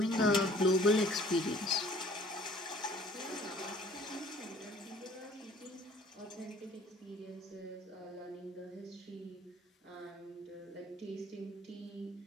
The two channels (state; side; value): normal; both; correlation 0.54